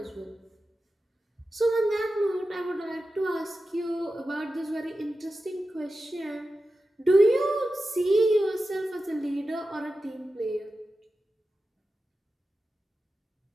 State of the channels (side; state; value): both; normal; correlation 0.92